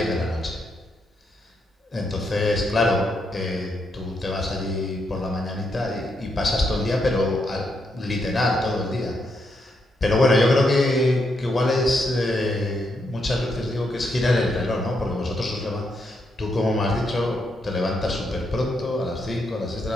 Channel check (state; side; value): normal; both; correlation 0.80